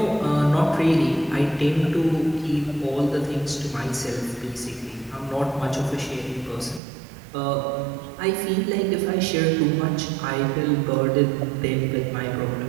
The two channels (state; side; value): drops out; left; at 6.8 s